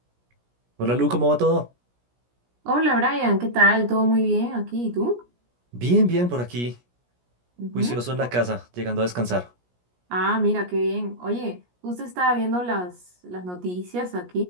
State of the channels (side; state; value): left; late; 17 ms